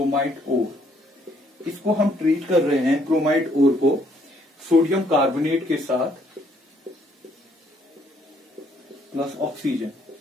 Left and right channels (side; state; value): both; normal; correlation 0.67